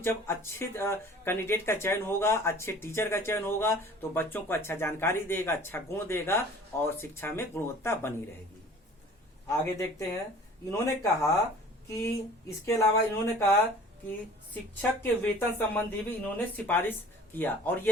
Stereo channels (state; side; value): normal; both; correlation 0.47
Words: जब अच्छे कैंडिडेट का चयन होगा, अच्छे टीचर का चयन होगा, तो बच्चों को अच्छा जानकारी देगा, अच्छा गुण देगा, और शिक्षा में गुणवत्ता बनी रहेगी। आगे देखते हैं, इन्होंने कहा कि इसके अलावा इन्होंने कहा कि शिक्षक के वेतन संबंधी भी इन्होंने सिफारिश किया, और